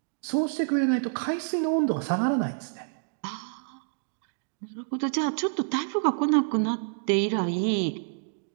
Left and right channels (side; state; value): left; silent; digital silence